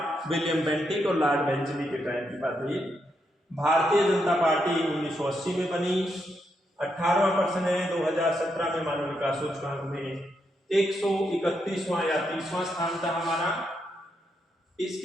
विलियम बेंटिक और लॉर्ड बेंचली के टाइम की बात है। भारतीय जनता पार्टी 1980 में बनी। 18वां प्रश्न है, 2017 में मानव विकास सूचकांक में 131वां या 30वां स्थान था हमारा।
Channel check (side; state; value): both; normal; correlation 0.81